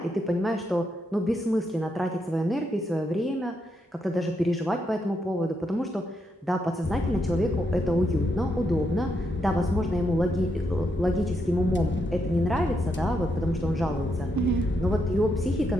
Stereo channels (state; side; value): normal; both; correlation 0.80